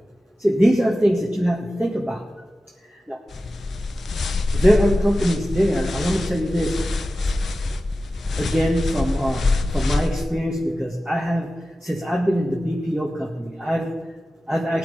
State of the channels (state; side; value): normal; both; correlation 0.94